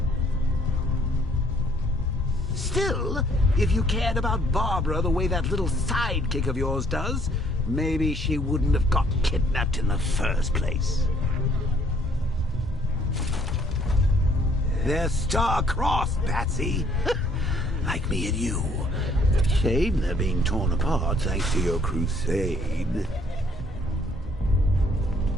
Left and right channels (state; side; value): normal; both; correlation 0.63